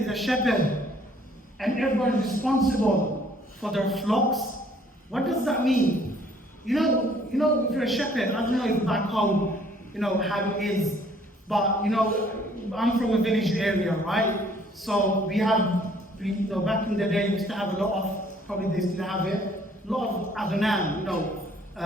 a shepherd and everyone is responsible for their flocks? What does that mean? You know, if you're a shepherd, I don't know if back home, how it is, but I'm from a village area, right? So we have, back in the day, we used to have a lot of, probably they still have it, a lot of aghnam,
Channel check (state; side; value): normal; both; correlation 0.60